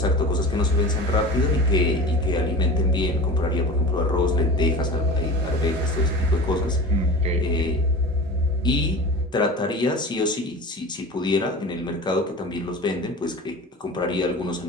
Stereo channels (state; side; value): normal; both; correlation 0.34